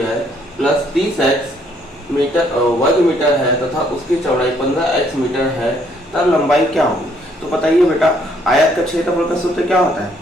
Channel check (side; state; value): both; normal; correlation 0.67